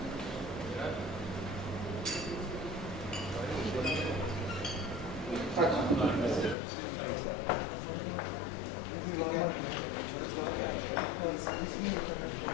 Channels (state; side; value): drops out; right; at 6.6 s